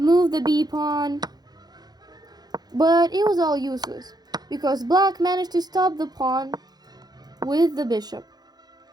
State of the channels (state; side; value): late; left; 0.19 ms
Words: the b pawn, but it was all useless because black managed to stop the pawn with the bishop.